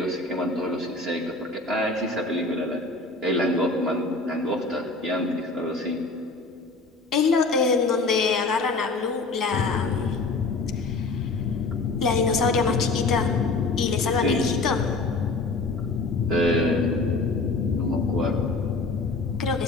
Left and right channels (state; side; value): quieter; right; 3.5 dB